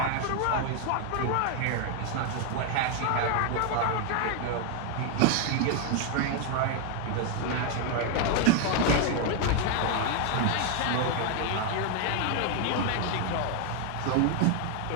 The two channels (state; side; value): different; both; correlation 0.01